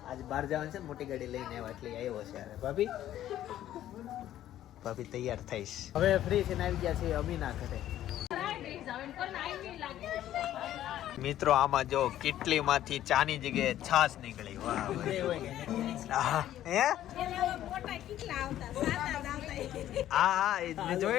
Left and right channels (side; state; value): right; quieter; 12.5 dB